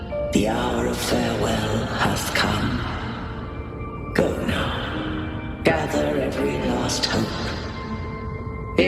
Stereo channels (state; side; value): identical; both; correlation 1.00